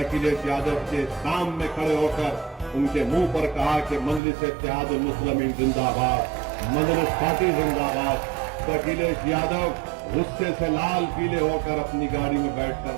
यादव के सामने खड़े होकर उनके मुंह पर कहा कि मजलिस-ए-इत्तेहादुल मुस्लिमीन जिंदाबाद, मजलिस पार्टी जिंदाबाद। तो अखिलेश यादव गुस्से से लाल पीले होकर अपनी गाड़ी में बैठकर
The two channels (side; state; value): left; drops out; at 4.2 s